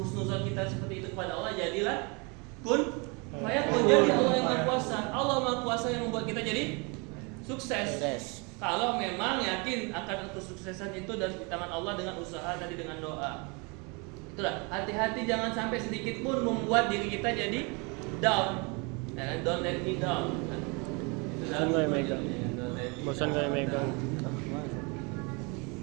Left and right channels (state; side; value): quieter; left; 30.7 dB